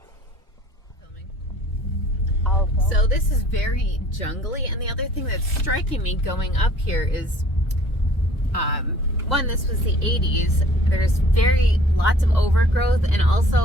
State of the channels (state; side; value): normal; both; correlation 0.53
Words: So this is very jungly, and the other thing that's striking me going up here is, one, this was the 80s. There's lots of overgrowth, and